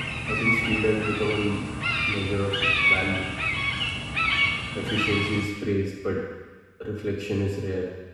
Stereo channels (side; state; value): both; identical; correlation 1.00